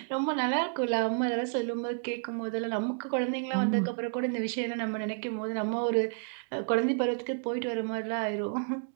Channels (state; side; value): silent; left; 57 dB below the other